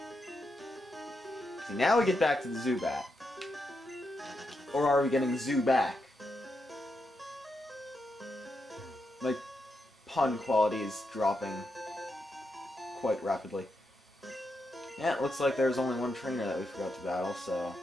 See, now we get back to the Zubat. Or are we getting Zuback? My pun quality is dropping quite rapidly. Yeah, it looks like there's only one trainer that we forgot to battle, so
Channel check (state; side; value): normal; both; correlation 0.84